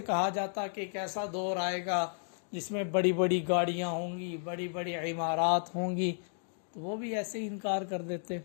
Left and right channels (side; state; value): right; silent; digital silence